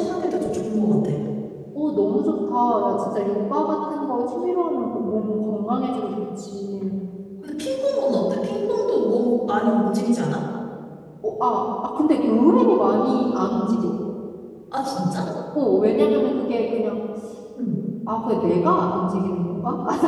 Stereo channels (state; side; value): identical; both; correlation 1.00